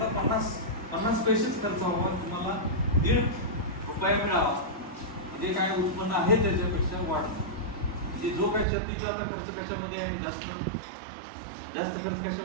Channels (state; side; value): drops out; left; at 8.7 s